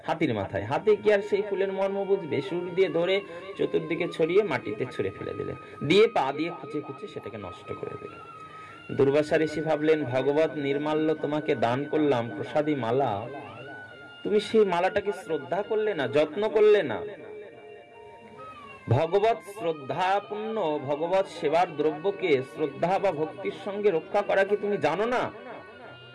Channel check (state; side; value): identical; both; correlation 1.00